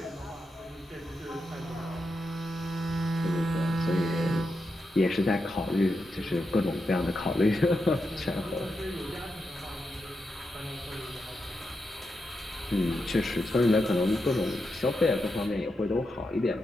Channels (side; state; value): both; normal; correlation 0.86